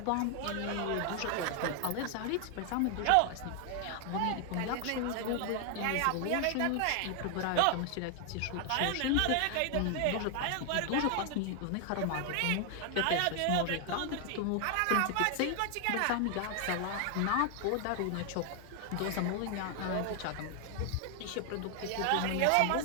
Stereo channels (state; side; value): different; both; correlation 0.00